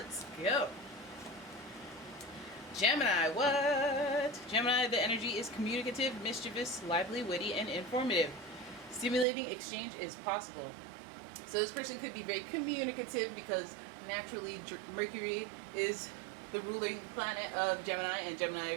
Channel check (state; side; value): drops out; left; at 9.2 s